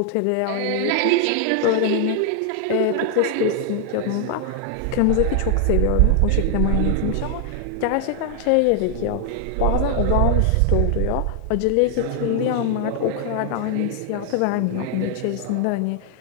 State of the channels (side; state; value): both; different; correlation 0.00